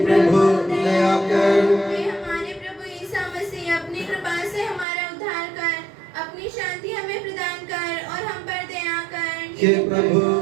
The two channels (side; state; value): left; drops out; at 4.9 s